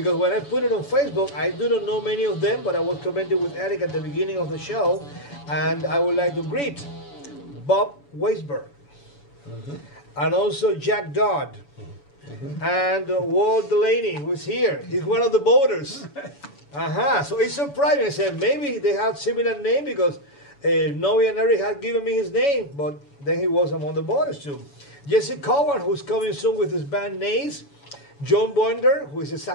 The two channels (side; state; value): right; late; 7.0 ms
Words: when I put it on Facebook, I do not know many of them, but I was commenting with Eric at the beginning of the show, and I would like to greet Bob Weisberg, and also Jack Dodd, and Walt Delaney, who's here. He's one of the voters. So it's surprising. I said maybe they have similar name because Noe and Eric had given me his name, but then he was among the voters too. Jesse Cowan, who's coming soon with his band Nays. John Boinder, who is a